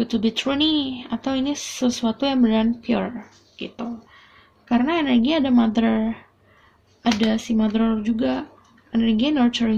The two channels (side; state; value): both; identical; correlation 1.00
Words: to be true nih, atau ini sesuatu yang beneran pure gitu. Karena energi ada mother, ada si mother juga, energi